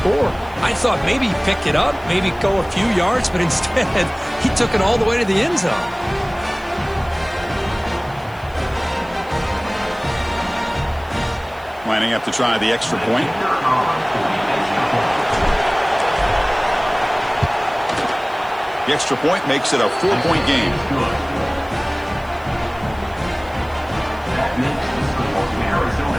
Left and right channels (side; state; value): right; noise; hiss, 27 dB below the sound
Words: I thought maybe he'd pick it up, maybe go a few yards, but instead he took it all the way to the end zone. Lining up to try the extra point. The extra point makes it a 4-point game.